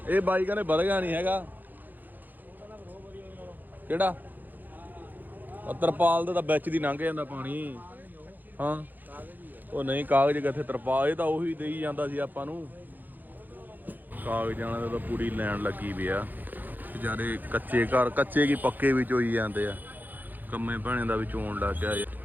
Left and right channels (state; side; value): late; left; 0.086 ms